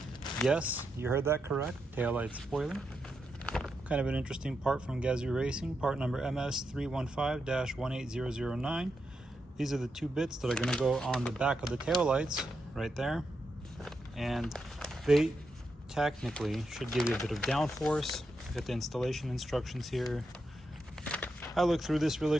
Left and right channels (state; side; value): normal; both; correlation 0.85